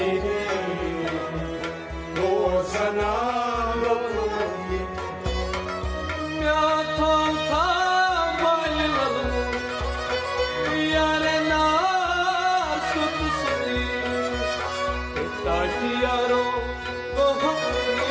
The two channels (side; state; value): both; identical; correlation 1.00